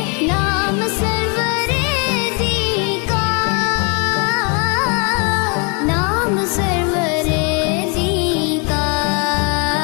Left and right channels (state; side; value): quieter; right; 33.1 dB